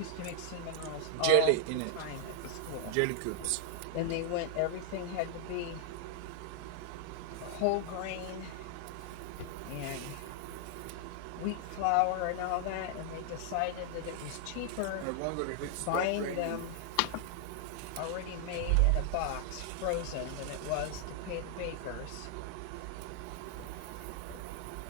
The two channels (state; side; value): different; both; correlation 0.00